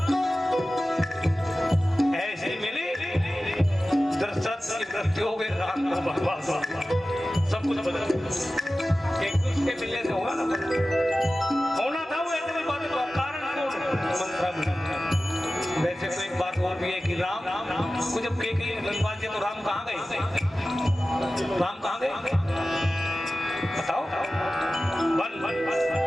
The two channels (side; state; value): both; normal; correlation 0.95